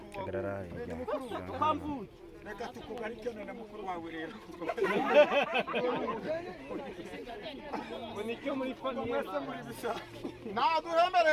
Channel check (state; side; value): identical; both; correlation 1.00